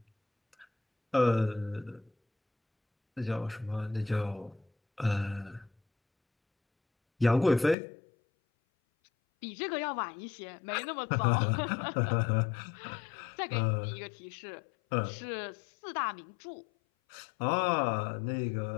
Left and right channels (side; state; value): right; drops out; at 7.8 s